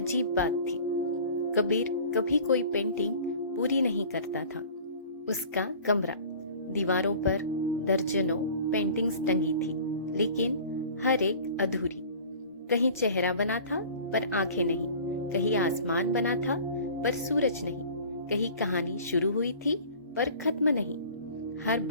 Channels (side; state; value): both; inverted; correlation -0.44